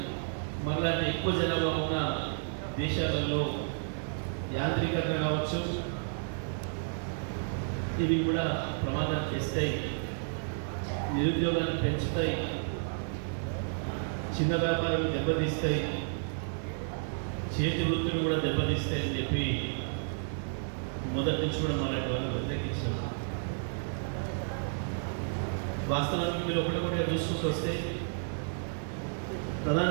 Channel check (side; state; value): left; silent; digital silence